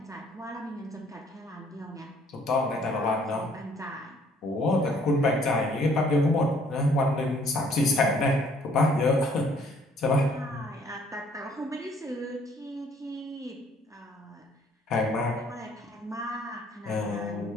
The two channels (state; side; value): normal; both; correlation 0.61